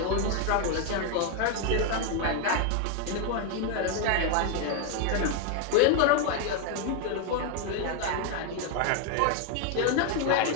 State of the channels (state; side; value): different; both; correlation 0.01